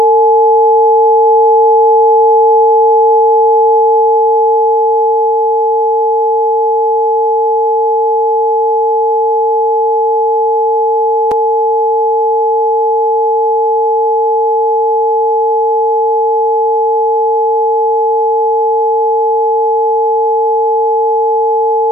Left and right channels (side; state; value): both; normal; correlation 0.62